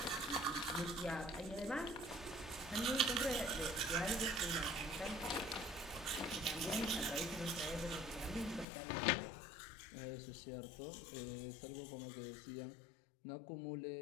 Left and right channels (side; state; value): right; drops out; at 8.7 s